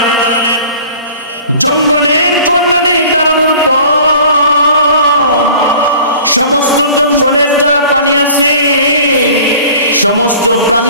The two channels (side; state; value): both; inverted; correlation -0.46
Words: জঙ্গলের কর্নারে দাঁড়ানোর পর সমস্ত জঙ্গলের যারা প্রাণী আছে সমস্ত